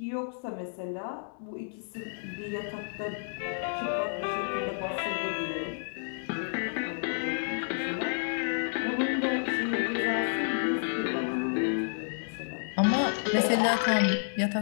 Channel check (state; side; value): silent; right; 58 dB below the other